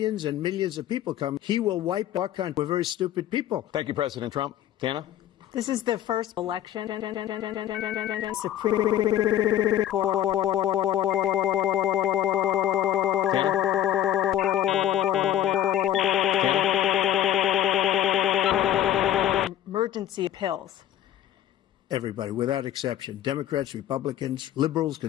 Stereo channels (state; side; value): quieter; right; 11.7 dB